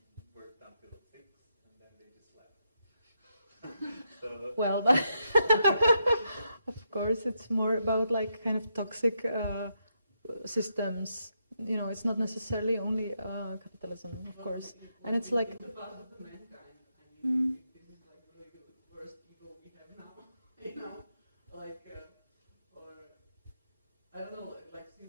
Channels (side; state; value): both; inverted; correlation -0.81